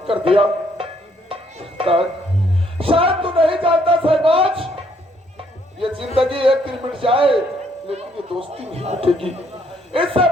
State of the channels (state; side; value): normal; both; correlation 0.68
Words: कर दिया। शायद तू नहीं जानता सहबाज, ये जिंदगी एक दिन मिट जाए लेकिन ये दोस्ती नहीं मिटेगी। इससे